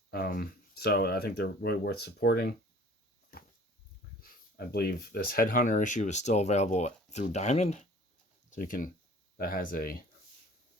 So I think they're really worth supporting. I believe this Headhunter issue is still available through Diamond, so that has I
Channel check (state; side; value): normal; both; correlation 0.49